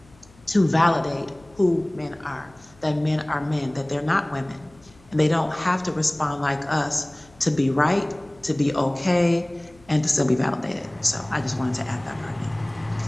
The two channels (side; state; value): left; noise; hum, 28 dB below the sound